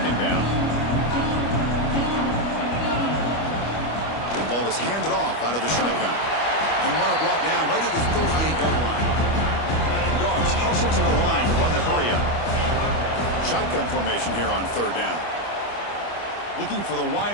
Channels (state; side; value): late; right; 25 ms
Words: down. The ball is handed off out of the shotgun. And the runner brought down right at the 38-yard line. Dogs hustle to the line to run the hurry up. Shotgun formation here on third down. Looking for the